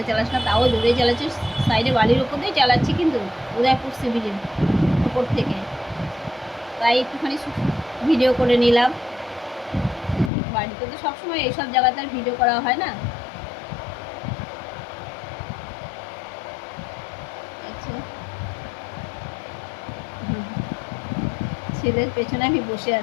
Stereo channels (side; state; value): right; drops out; at 10.3 s